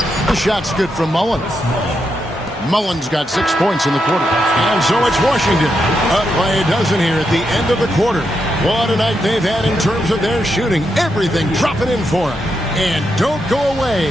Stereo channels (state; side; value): normal; both; correlation 0.83